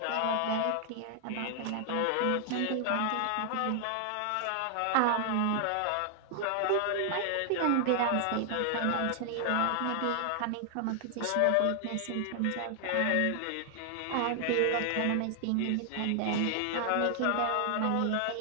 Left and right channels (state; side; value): different; both; correlation 0.00